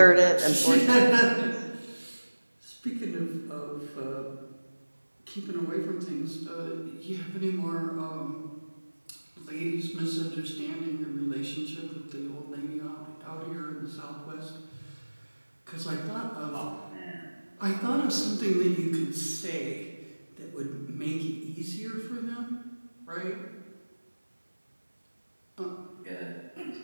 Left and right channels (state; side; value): inverted; both; correlation -1.00